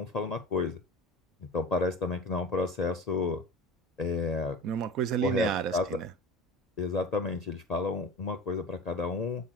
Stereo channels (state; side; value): normal; both; correlation 0.34